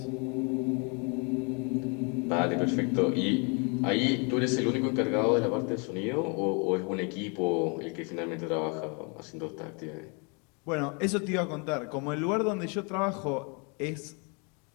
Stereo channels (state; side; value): quieter; right; 33.9 dB